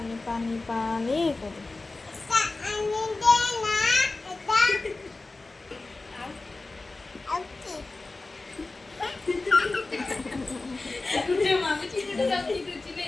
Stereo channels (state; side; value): quieter; right; 3.3 dB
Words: पानी पानी कर কুটে মামি চিনিটা দাও কি দিছি